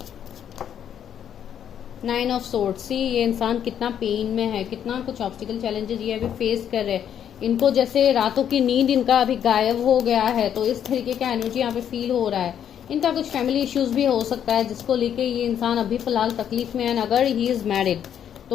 नाइन ऑफ सोर्ड्स, सी ये इंसान कितना पेन में है, कितना कुछ ऑब्स्टिकल चैलेंजेस ये अभी फेस कर रहे हैं। इनको जैसे रातों की नींद इनका अभी गायब हो गया है, तो इस तरीके का एनर्जी यहाँ पे फील हो रहा है। इनका कुछ फैमिली इश्यूज भी हो सकता है, जिसको लेके ये इंसान अभी फिलहाल तकलीफ में है। अगर ही इज मैरिड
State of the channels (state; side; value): quieter; right; 9.3 dB